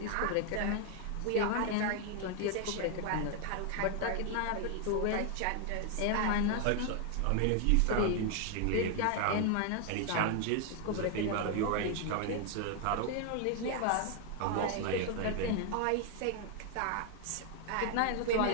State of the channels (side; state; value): both; different; correlation 0.00